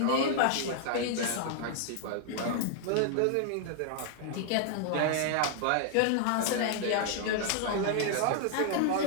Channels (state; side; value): different; both; correlation -0.01